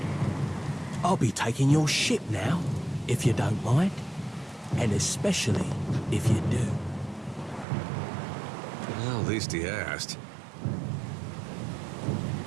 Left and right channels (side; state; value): left; drops out; at 7.7 s